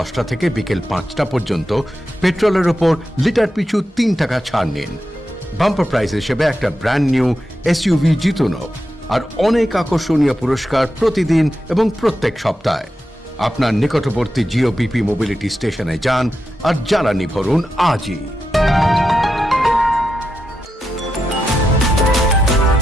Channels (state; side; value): normal; both; correlation 0.88